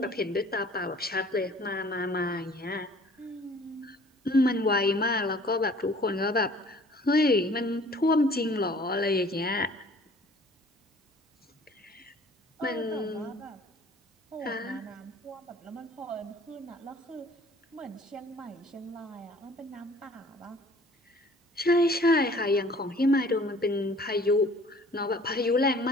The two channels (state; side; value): normal; both; correlation 0.52